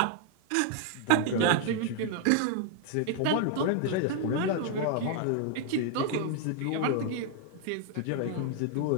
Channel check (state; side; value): different; both; correlation 0.00